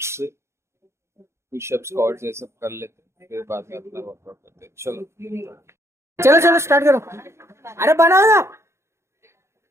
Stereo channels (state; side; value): late; left; 0.13 ms